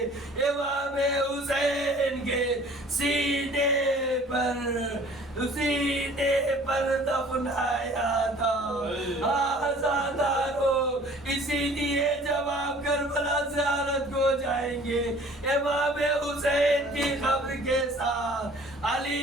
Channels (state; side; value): normal; both; correlation 0.51